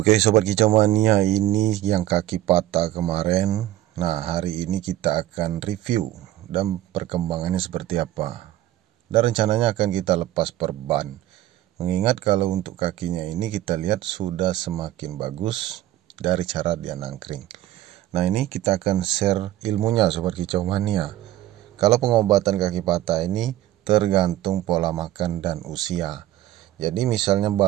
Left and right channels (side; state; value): left; quieter; 14.2 dB